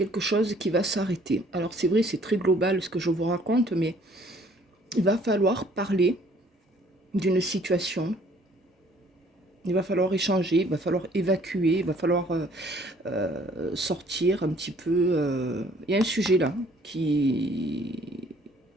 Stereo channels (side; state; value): both; normal; correlation 0.59